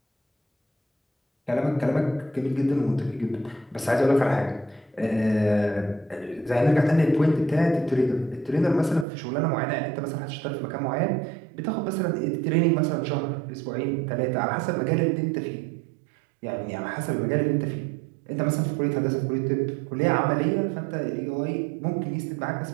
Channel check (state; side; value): drops out; left; at 9.1 s